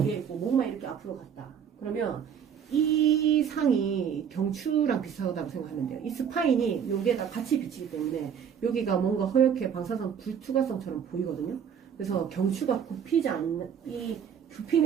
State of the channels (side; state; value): left; quieter; 8.0 dB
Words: 뒤에 있고 목만 이렇게 앞으로 갔다. 그러면 이 상이 경추랑 비슷하다고 생각하면 돼요. 이 스파인이 여기에다 같이 비치기 때문에 여기가 뭔가 허옇게 방사선 불투과성처럼 보이거든요. 그래서 경추가 굽히지 않는,